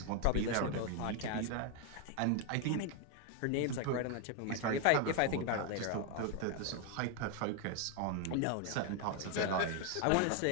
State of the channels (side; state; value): both; different; correlation 0.01